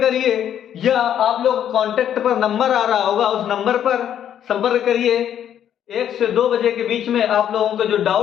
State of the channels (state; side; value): quieter; right; 9.9 dB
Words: करिए, या आप लोग कांटेक्ट पर नंबर आ रहा होगा उस नंबर पर संपर्क करिए। 1 से 2 बजे के बीच में आप लोगों के जो